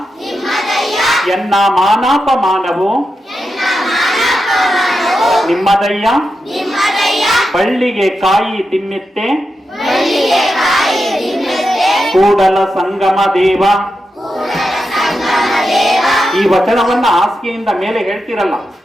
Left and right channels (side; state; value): both; normal; correlation 0.88